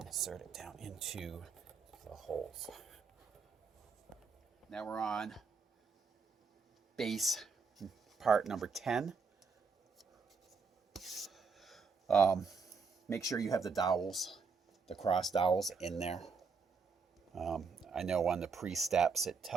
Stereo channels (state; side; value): quieter; left; 5.0 dB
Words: insert it down into the holes. Now we're on base part number 10. Make sure you have the dowels, the cross dowels in there. I know on the pre-steps it